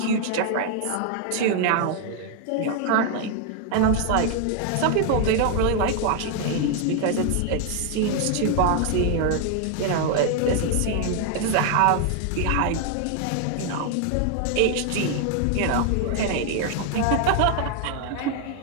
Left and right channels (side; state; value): both; different; correlation 0.00